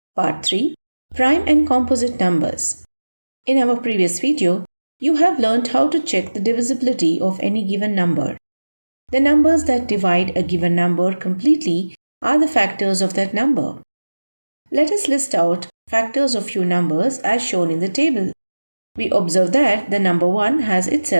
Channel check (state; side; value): inverted; both; correlation -1.00